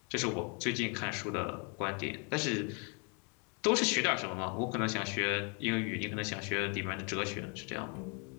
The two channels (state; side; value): quieter; right; 36.1 dB